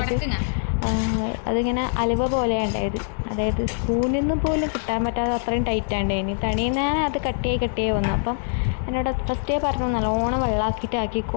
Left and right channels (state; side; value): silent; right; 63 dB below the other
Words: അതിങ്ങനെ അലുവ പോലെ ഉണ്ടായത്. അതായത് സ്പൂണിൽ നിന്ന് പോലും കിട്ടാൻ പറ്റാതെ അത്രയും ടൈറ്റാണ്ടായിന്. തണിയിൽ ഞാൻ അത് കട്ടിയായി വന്നു. അപ്പം എന്നോട് ഫസ്റ്റേ പറഞ്ഞു നല്ലോണം വെള്ളമാക്കിയിട്ട്